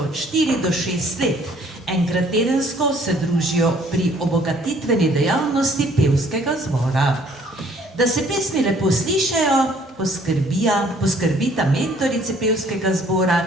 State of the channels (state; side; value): normal; both; correlation 0.59